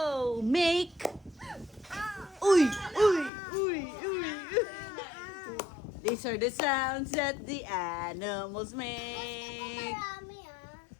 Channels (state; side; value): drops out; right; at 3.3 s